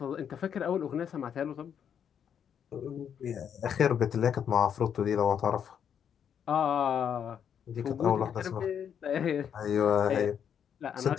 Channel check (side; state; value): right; quieter; 8.3 dB